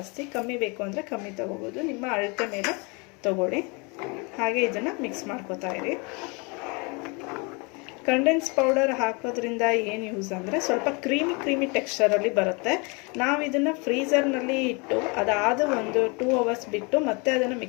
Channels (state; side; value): quieter; right; 30.5 dB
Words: ಕಮ್ಮಿ ಬೇಕು ಅಂದರೆ ಕಮ್ಮಿ ತೊಗೋಬೋದು. ನಿಮ್ಮ ಅಳತೆ ಮೇಲೆ ತೊಗೊಳ್ಳಿ. ಹಾಗೆ ಇದನ್ನು ಮಿಕ್ಸ್ ಮಾಡ್ಕೋತಾ ಇರಿ. ಕಂಡೆನ್ಸ್ ಪೌಡರ್ ಹಾಕೋದ್ರಿಂದ ಏನು ಯೂಸ್ ಅಂದರೆ ಸ್ವಲ್ಪ ಕ್ರೀಮಿ ಟೆಕ್ಸ್ಚರಲ್ಲಿ ಬರುತ್ತೆ. ನಾವು ಇದನ್ನು ಫ್ರೀಝರ್ನಲ್ಲಿ ಇಟ್ಟು ಅದಾದ ಒಂದು 2 ಅವರ್ಸ್ ಬಿಟ್ಟು ಮತ್ತೆ ಅದನ್ನು